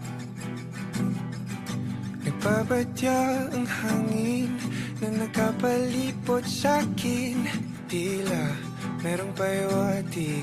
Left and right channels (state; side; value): identical; both; correlation 1.00